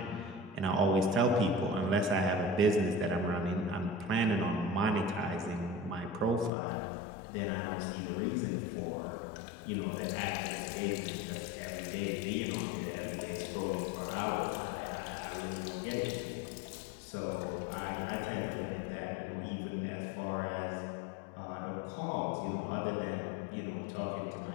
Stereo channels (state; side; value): drops out; right; at 6.5 s